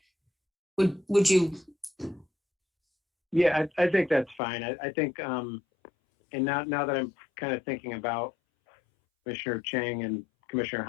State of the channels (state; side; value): drops out; right; at 4.4 s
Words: Would you? Yeah, I think that's fine. I think, and now that I'm kind of thinking about Commissioner Cheng and Commissioner